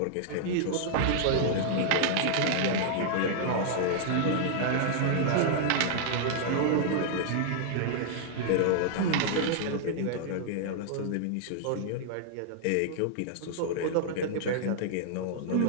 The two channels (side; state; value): both; different; correlation -0.01